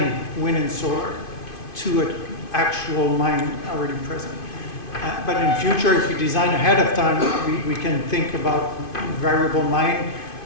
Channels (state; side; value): late; right; 2.5 ms